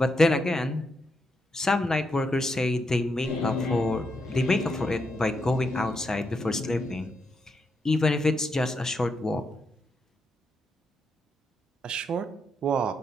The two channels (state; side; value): normal; both; correlation 0.81